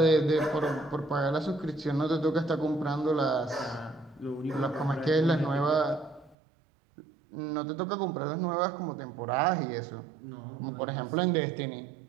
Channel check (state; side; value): drops out; left; at 6.4 s